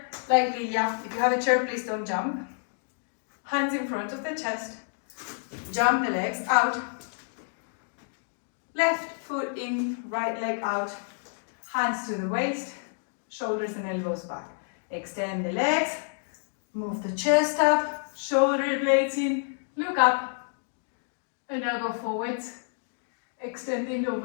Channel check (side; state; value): right; silent; digital silence